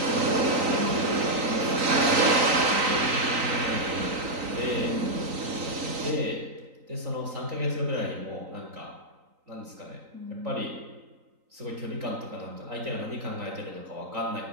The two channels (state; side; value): late; left; 3.9 ms